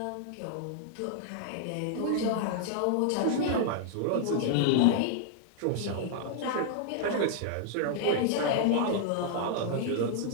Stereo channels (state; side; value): different; both; correlation -0.01